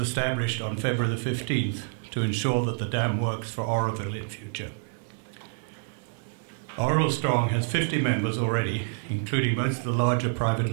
established on February the 15th to ensure that the dam works for Oroville in future. Oroville Strong has 50 members already, including most of the larger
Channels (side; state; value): left; silent; digital silence